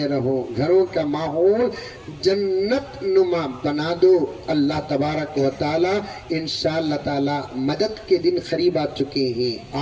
رہو، گھروں کا ماحول جنت نما بنا دو. اللہ تبارک و تعالی انشاءاللہ تعالی مدد کے دن قریب آ چکے ہیں.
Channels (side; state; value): both; identical; correlation 1.00